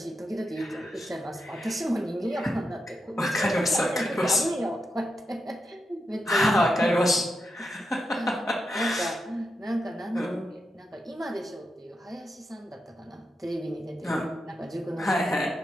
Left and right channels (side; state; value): both; normal; correlation 0.86